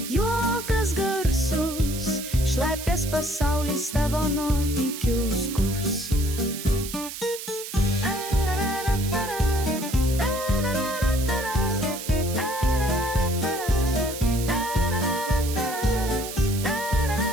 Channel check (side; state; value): right; noise; hiss, 9 dB below the sound